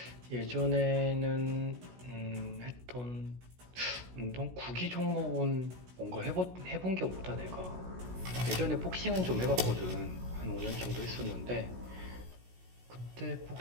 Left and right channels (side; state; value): left; late; 16 ms